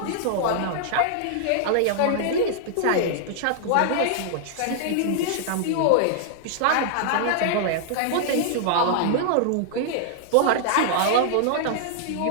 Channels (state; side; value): different; both; correlation -0.01